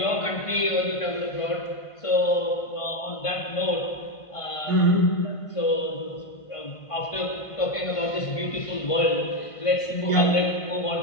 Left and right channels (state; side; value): late; right; 1.5 ms